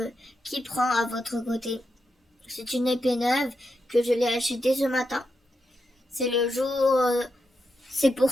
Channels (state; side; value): normal; both; correlation 0.85